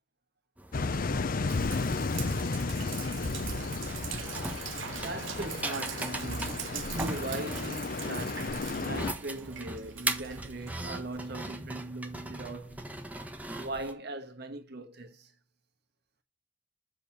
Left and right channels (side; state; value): both; normal; correlation 0.40